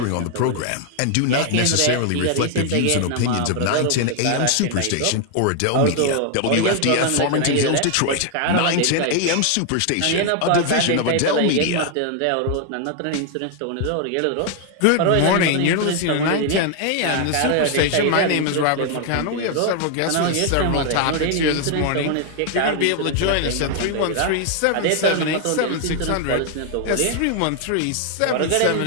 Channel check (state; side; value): different; both; correlation 0.00